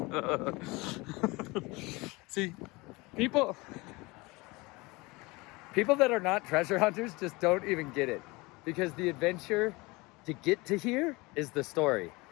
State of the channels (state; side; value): quieter; right; 23.9 dB